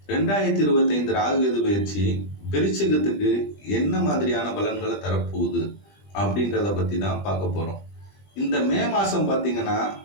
2025 ராகு கேது பயிற்சி விருச்சிகத்துக்கு என்ன மாதிரியான பலன்களை தரப்போகுது அப்படின்றத பற்றி தான் பார்க்க போகிறோம். இந்த மே மாதம் பார்த்திங்கன்னா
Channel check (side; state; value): right; late; 20 ms